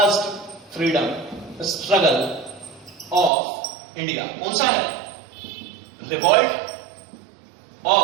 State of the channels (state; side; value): drops out; left; at 3.3 s